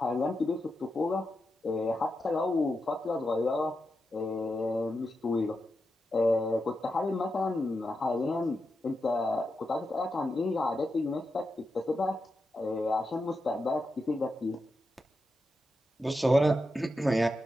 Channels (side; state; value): both; normal; correlation 0.88